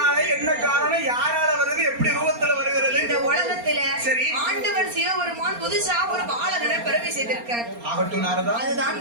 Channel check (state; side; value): late; left; 4.3 ms